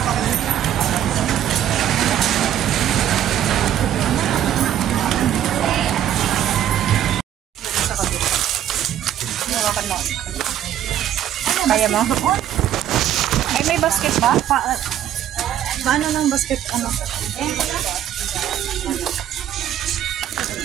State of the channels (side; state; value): left; quieter; 11.0 dB